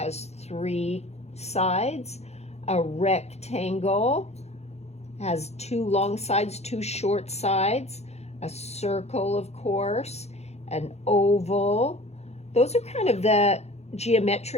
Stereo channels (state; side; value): late; right; 0.31 ms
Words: 3 sides, a rectangle has 2 long sides, 2 short sides, a circle, of course, an oval. Those are kind of the